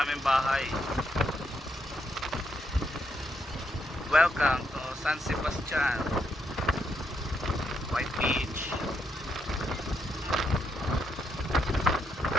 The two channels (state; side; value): normal; both; correlation 0.79